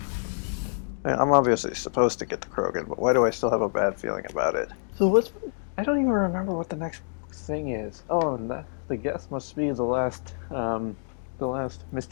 I'm obviously supposed to get the Krogan, but why do I still have a bad feeling about it? So I don't even remember what the next thing is. Oh, and the guest must be the last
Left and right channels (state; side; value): silent; right; digital silence